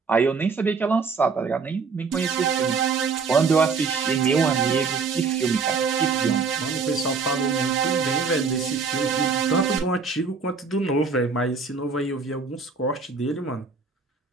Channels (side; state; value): left; quieter; 4.9 dB